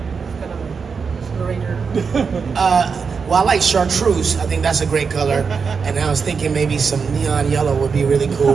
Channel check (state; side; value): quieter; left; 5.6 dB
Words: kind of a Blue Ranger. Well, I like chartreuse. I think that's a great color. And I was thinking maybe some neon yellow would be really